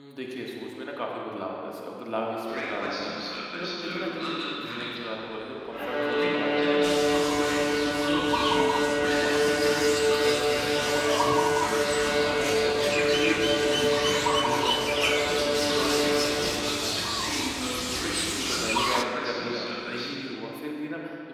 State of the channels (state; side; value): identical; both; correlation 1.00